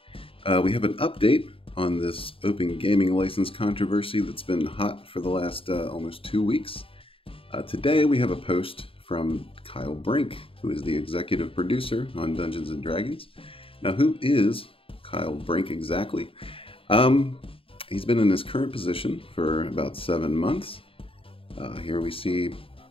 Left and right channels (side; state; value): right; late; 0.27 ms